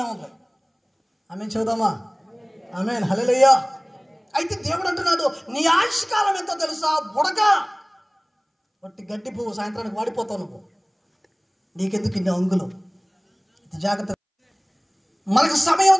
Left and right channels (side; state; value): both; identical; correlation 1.00